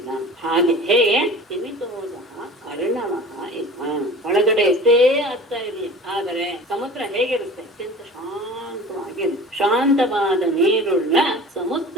ಹಾಗೆ ಹೇಗೆ ತಿಮಿತೋದ ಅರ್ಣವಃ ಇವ. ಒಳಗಡೆ ಎಷ್ಟೇ ಅರ್ಥ ಇರಲಿ, ಆದರೆ ಸಮುದ್ರ ಹೇಗಿರುತ್ತೆ? ಅತ್ಯಂತ ಶಾಂತವಾಗಿರುತ್ತೆ. ಶಾಂತವಾದ ನೀರುಳ್ಳ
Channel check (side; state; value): both; normal; correlation 0.40